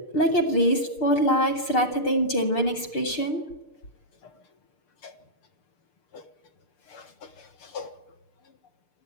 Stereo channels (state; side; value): late; right; 6.7 ms